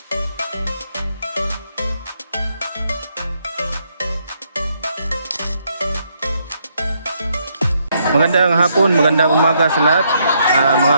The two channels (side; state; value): both; inverted; correlation -0.74